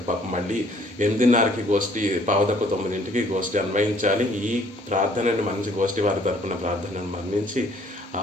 పాపం మళ్ళీ 8:30కి గోష్ఠి, 8:45కి గోష్ఠి అన్వయించాలి. ఈ ప్రార్థనని మంచి గోష్ఠి వారి తరపున ప్రార్థనను మన్నించి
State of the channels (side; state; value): both; normal; correlation 0.60